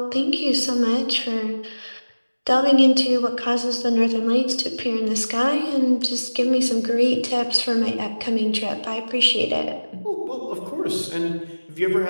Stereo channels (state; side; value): inverted; both; correlation -1.00